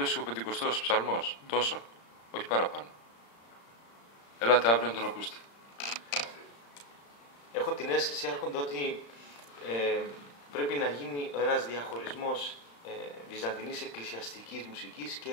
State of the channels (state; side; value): late; right; 35 ms